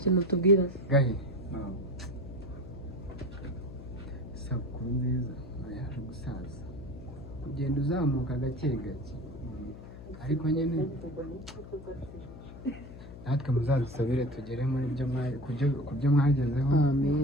kintu tubwira gahe isabukuru nziza yaje gusaza kugenda uzamuka gake gake ariko nyine natwe muzadusabire tugere muri ku byo mwagezeho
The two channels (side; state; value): left; noise; hum, 14 dB below the sound